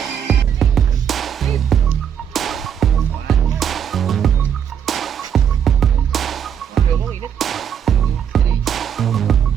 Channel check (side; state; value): left; quieter; 8.5 dB